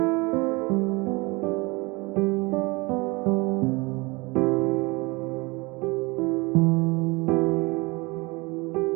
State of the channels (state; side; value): quieter; left; 25.6 dB